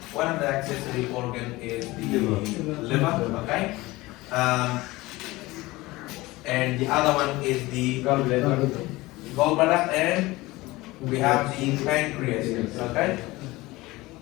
one of the accessory organ is the liver. Okay. And the other one is the gallbladder, and we have the pancreas. Okay.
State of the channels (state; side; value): quieter; right; 20.2 dB